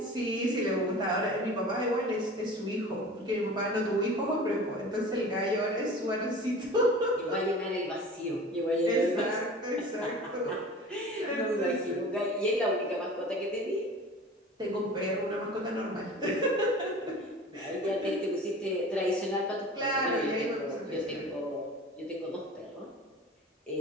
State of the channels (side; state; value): both; normal; correlation 0.39